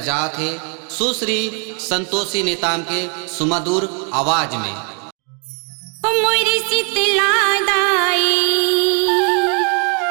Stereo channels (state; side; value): quieter; left; 36.8 dB